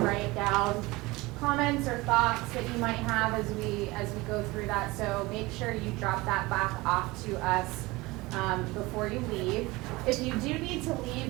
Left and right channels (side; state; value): left; quieter; 21.8 dB